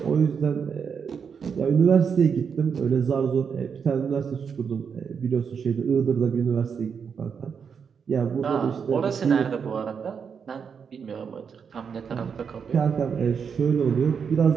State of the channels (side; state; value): left; quieter; 6.6 dB